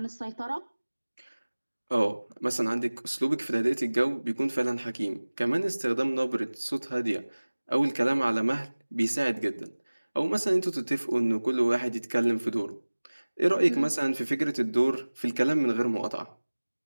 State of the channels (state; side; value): inverted; both; correlation -1.00